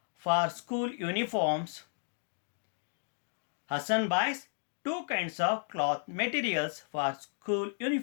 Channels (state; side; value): silent; right; digital silence